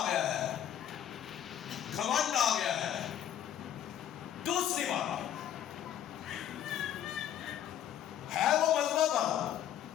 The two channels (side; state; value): right; quieter; 10.3 dB